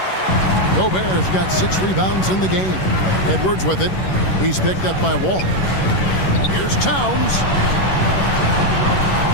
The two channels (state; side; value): late; right; 11 ms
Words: Gobert's got 6 rebounds in the game. Edwards with it. He's picked up by Wall. Here's Towns.